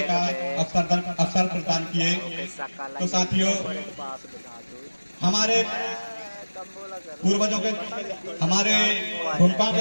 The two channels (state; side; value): inverted; both; correlation -1.00